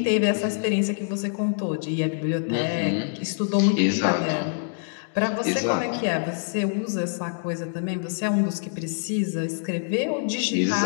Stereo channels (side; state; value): right; silent; digital silence